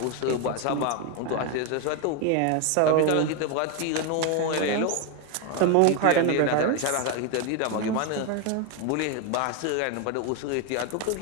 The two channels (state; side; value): different; both; correlation 0.01